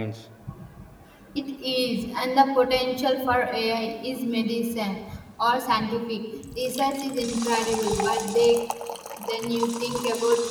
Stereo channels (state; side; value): identical; both; correlation 1.00